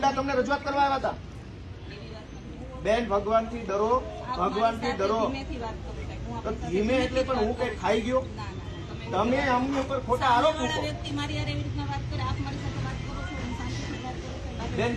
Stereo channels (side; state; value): both; identical; correlation 1.00